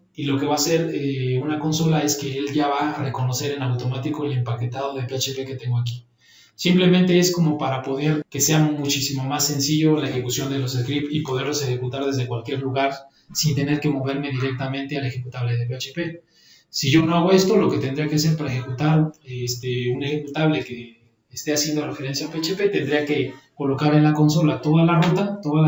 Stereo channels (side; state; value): both; identical; correlation 1.00